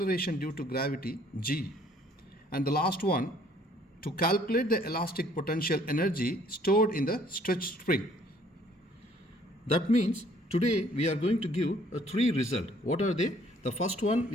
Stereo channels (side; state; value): both; normal; correlation 0.60